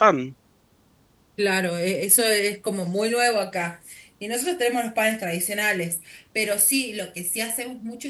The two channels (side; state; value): both; identical; correlation 1.00